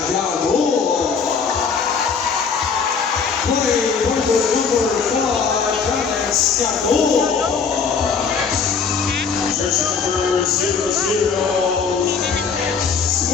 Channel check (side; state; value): right; quieter; 5.8 dB